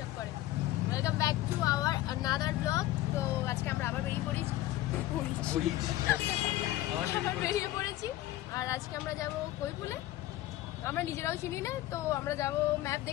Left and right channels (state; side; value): quieter; right; 15.4 dB